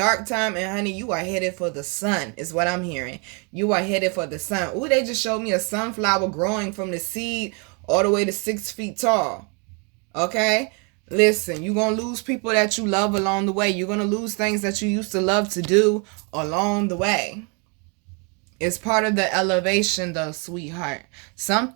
time, and honey, you are headed for the sun, is what I'm hearing. You are headed for the sun. Ooh, they just showed me a sunflower growing from the seed all the way to 6 feet tall. Okay? Listen, you're going to lose people that you love along the way. You're going to lose things that you used to love to do along the way. It's part of the elevation, though, sweetheart.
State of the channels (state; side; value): quieter; left; 34.7 dB